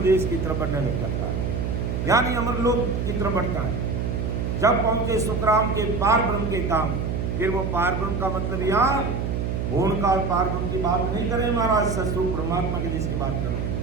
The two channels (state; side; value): noise; right; hum, 1 dB below the sound